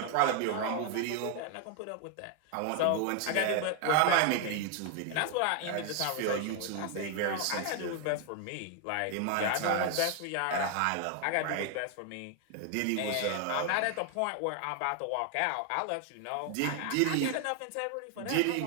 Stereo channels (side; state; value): both; different; correlation 0.00